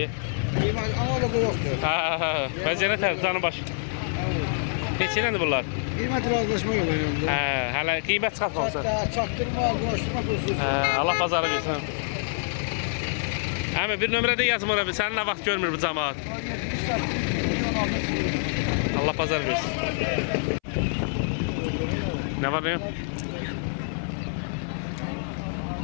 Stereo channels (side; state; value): right; silent; 61 dB below the other